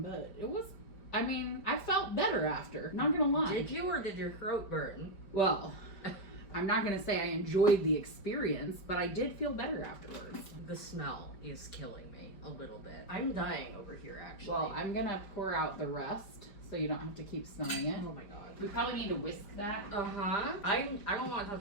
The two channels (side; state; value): right; late; 5.0 ms